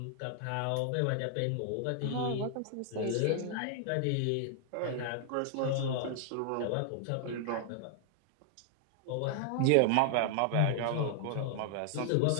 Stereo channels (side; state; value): both; different; correlation 0.00